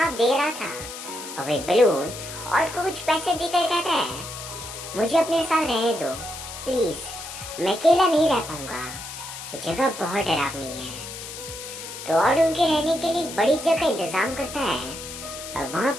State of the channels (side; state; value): left; noise; hiss, 10 dB below the sound